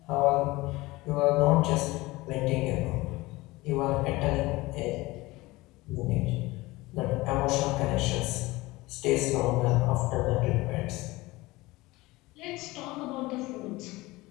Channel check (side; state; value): right; quieter; 20.6 dB